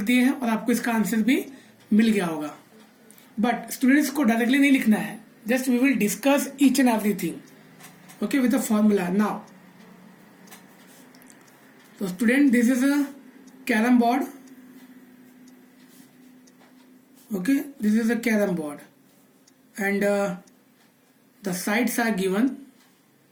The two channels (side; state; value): both; identical; correlation 1.00